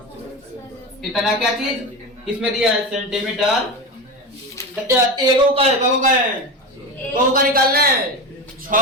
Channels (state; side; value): normal; both; correlation 0.22